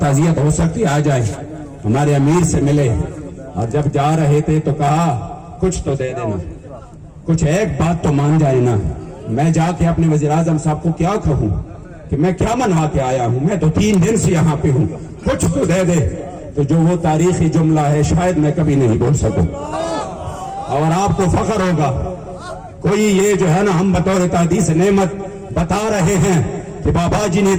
ہو سکتی آ جائے، ہمارے امیر سے ملے، اور جب جا رہے تھے تو کہا کچھ تو دے دینا، کچھ ایک بات تو مان جائے نا۔ میں جا کے اپنے وزیر اعظم صاحب کو کیا کہوں کہ میں کیا منوا کے آیا ہوں، میں تو 3 دن سے یہاں پہ ہوں، کچھ تو دے دے۔ تو جو وہ تاریخی جملہ ہے شاید میں کبھی نہیں بول سکوں، اور آپ کو فخر ہوگا۔ کوئی یہ جو ہے نا ہم بطور تحدیث نعمت بتا رہے ہیں کہ بابا جی نے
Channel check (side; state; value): both; identical; correlation 1.00